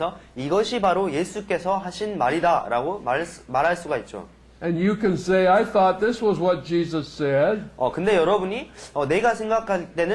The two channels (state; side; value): identical; both; correlation 1.00